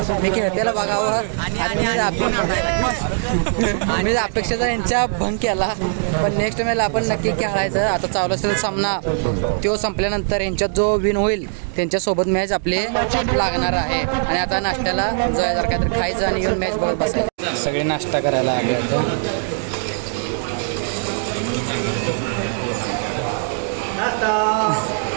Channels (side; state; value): left; silent; digital silence